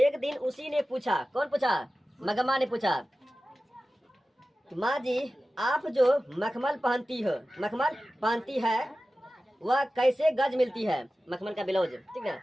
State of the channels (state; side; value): normal; both; correlation 0.95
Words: दिन उसी ने पूछा, कौन पूछा? मगम्मा ने पूछा, माँ जी आप जो मखमल पहनती है वह कैसे गज मिलती है? मखमल का ब्लाउज, ठीक ना।